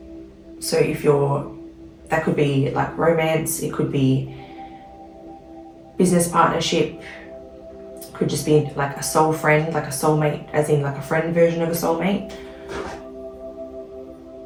So if that could be like romance, it could be business partnership, could just be like a soul friend, like a soulmate, as in like a friend version of a soulmate.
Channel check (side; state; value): both; identical; correlation 1.00